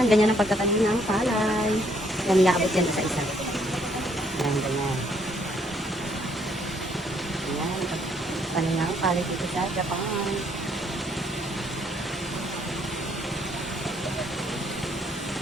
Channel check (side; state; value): both; normal; correlation 0.68